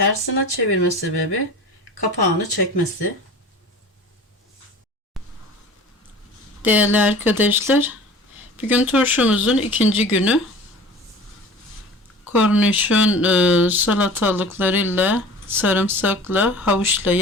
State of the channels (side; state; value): both; normal; correlation 0.41